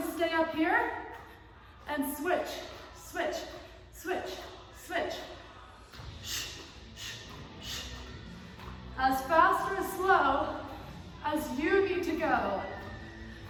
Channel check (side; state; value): both; identical; correlation 1.00